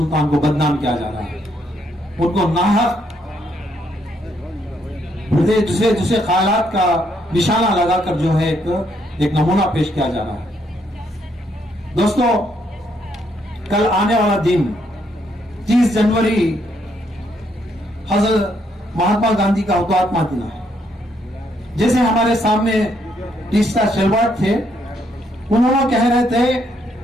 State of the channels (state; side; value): normal; both; correlation 0.73